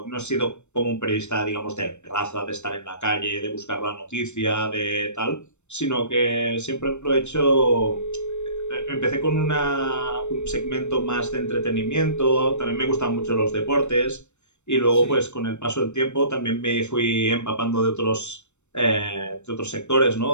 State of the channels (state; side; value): late; right; 0.83 ms